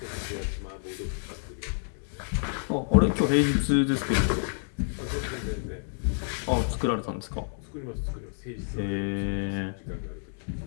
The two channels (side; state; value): right; silent; digital silence